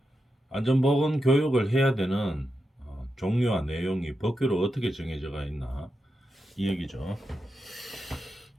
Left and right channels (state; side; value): normal; both; correlation 0.87